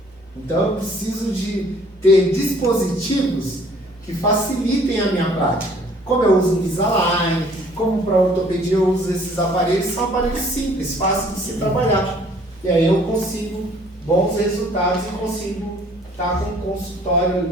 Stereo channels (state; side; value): normal; both; correlation 0.57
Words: Então, eu preciso de ter dispositivos que facilitem a minha prática. Como eu uso Invisalign, como para ortopedia eu uso esses aparelhos, são aparelhos simples, fáceis de se trabalhar. E aí eu consigo bons resultados e consigo estar com o consultório